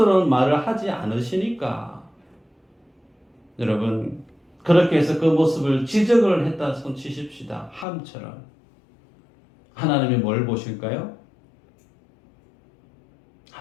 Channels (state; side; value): drops out; right; at 7.9 s